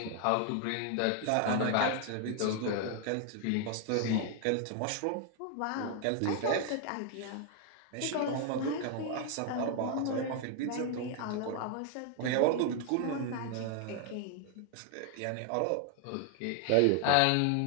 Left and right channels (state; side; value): different; both; correlation 0.00